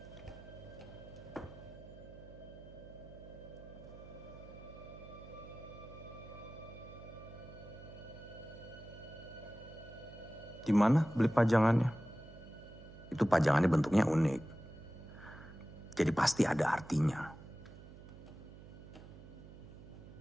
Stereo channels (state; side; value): noise; right; hum, 16 dB below the sound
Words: Di mana beli pajangannya? Itu pajangannya bentuknya unik. Jadi pasti ada artinya.